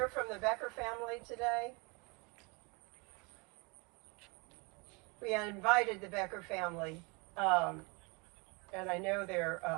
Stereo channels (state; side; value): quieter; left; 29.5 dB